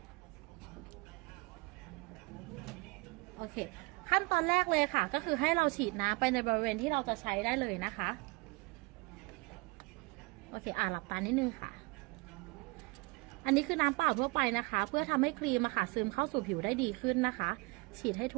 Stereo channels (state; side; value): quieter; left; 26.1 dB